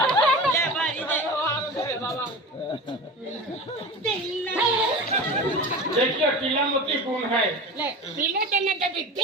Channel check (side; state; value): both; normal; correlation 0.31